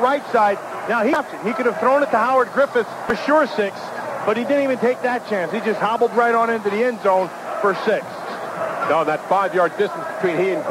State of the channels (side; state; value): both; identical; correlation 1.00